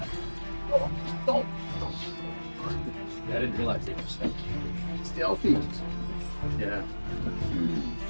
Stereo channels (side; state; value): both; inverted; correlation -1.00